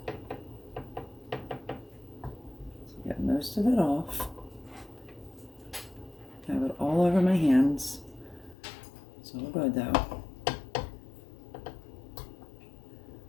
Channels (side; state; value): right; drops out; at 8.6 s